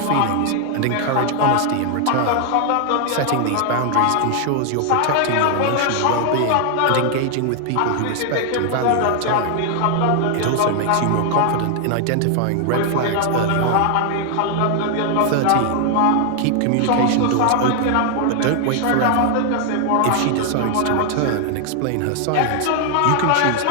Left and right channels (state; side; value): different; both; correlation 0.00